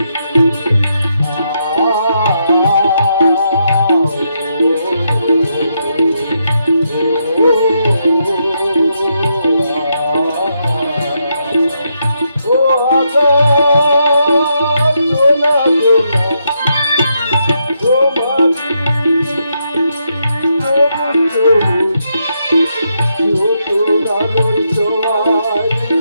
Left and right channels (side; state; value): both; inverted; correlation -0.80